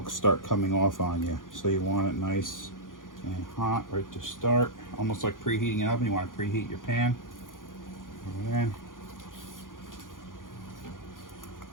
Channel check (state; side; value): late; right; 0.89 ms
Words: start coming off on you. So you want it nice and hot right to start. Almost like preheating an oven. You want to preheat your pan. And